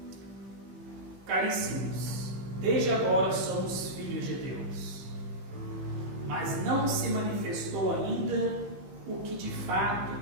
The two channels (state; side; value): late; left; 15 ms